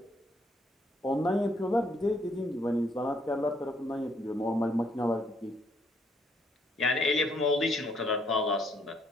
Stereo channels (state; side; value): normal; both; correlation 0.69